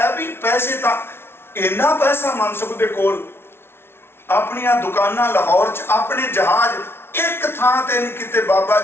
भी पैसे तां इन्ना पैसा मनसुख दे कोल, अपनियां दुकानां लाहौर च, अपने जहाज एक थां ते नहीं किते। बाबा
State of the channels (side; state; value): right; late; 0.12 ms